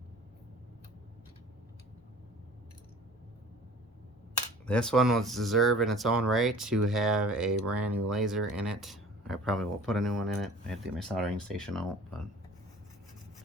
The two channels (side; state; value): both; normal; correlation 0.46